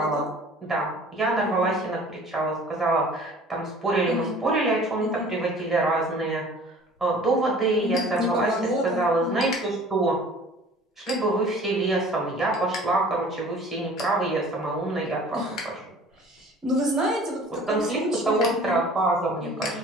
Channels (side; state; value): both; normal; correlation 0.48